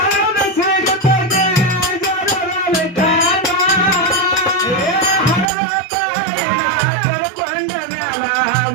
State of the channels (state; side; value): drops out; left; at 5.5 s